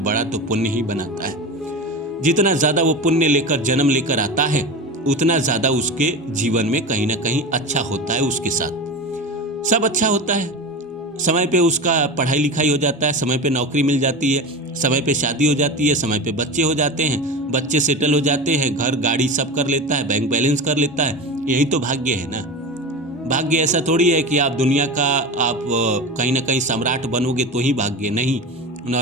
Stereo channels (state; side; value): normal; both; correlation 0.27